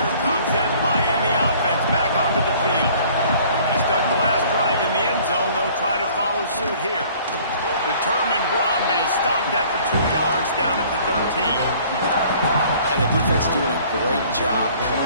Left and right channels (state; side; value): inverted; both; correlation -0.54